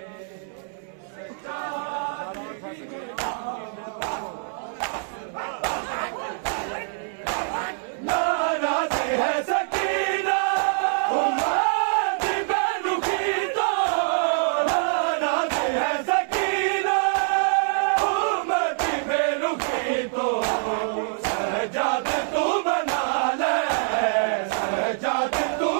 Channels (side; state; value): left; silent; digital silence